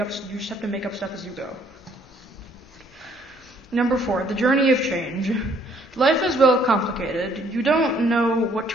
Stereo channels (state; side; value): normal; both; correlation 0.64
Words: have to make up stuff as you go. Number 4, the journey of change. Life is well complicated. You don't know what